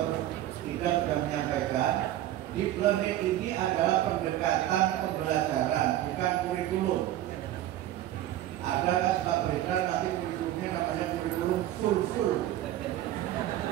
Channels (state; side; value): quieter; left; 13.5 dB